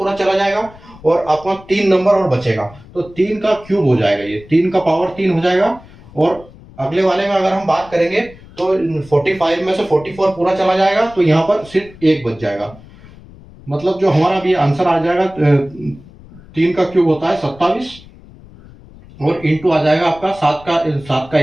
चला जाएगा, और अपना 3 नंबर और बचेगा, तो 3 का क्यूब हो जाएगा, ये 3 का पावर 3 हो जाएगा। और अगले वाले में अगर हम बात करेंगे तो 45 में से 44 पूरा चला जाएगा, तो यहाँ पर सिर्फ 1 बच जाएगा। मतलब जो हमारा भी आंसर आ जाएगा 3 का क्यूब होता है 27, और इंटू आ जाएगा आपका 7 का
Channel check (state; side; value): noise; left; rumble, 21 dB below the sound